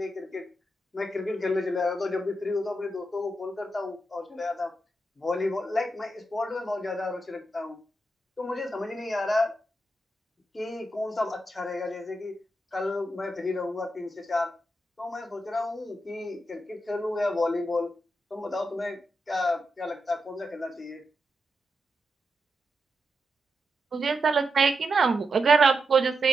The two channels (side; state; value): both; normal; correlation 0.86